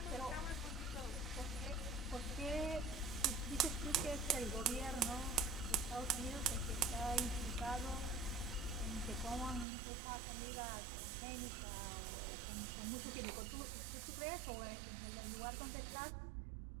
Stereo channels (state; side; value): drops out; left; at 9.7 s